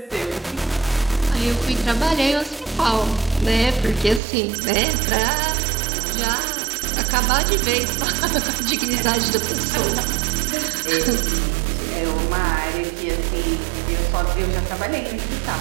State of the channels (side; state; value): left; drops out; at 4.2 s